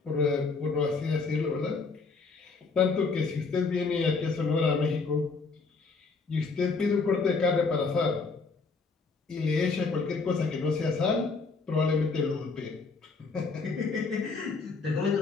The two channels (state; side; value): quieter; right; 4.4 dB